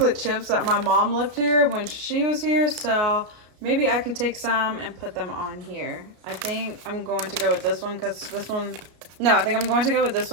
chips that my mom left here when she was here. So maybe I can take some and put them on here. I think I'm going to go with this one because this one, no, I think I'm going to go with this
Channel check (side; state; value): left; late; 33 ms